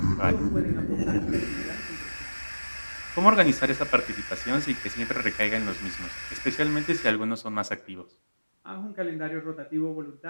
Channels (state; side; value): inverted; both; correlation -1.00